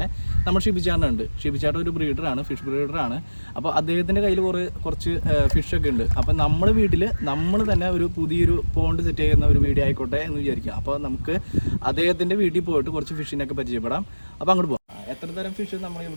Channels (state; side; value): inverted; both; correlation -1.00